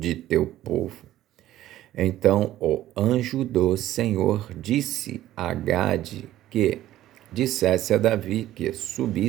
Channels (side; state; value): left; quieter; 13.9 dB